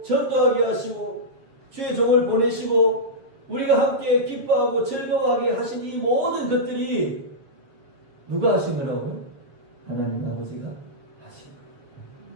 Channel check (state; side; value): late; left; 7.3 ms